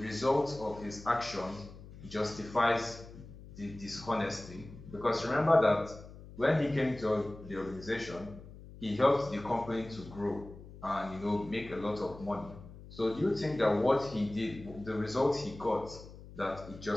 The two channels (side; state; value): left; noise; hum, 16 dB below the sound